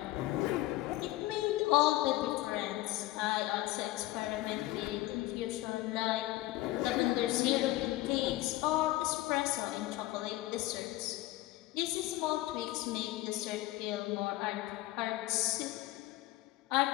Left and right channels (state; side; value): quieter; right; 17.4 dB